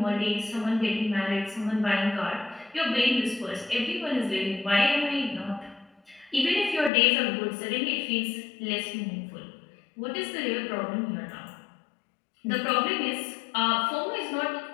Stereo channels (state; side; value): drops out; right; at 6.9 s